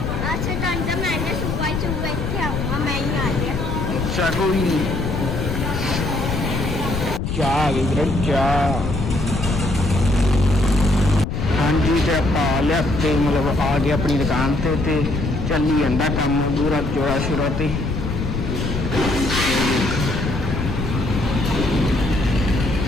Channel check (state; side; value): noise; left; rumble, 3 dB below the sound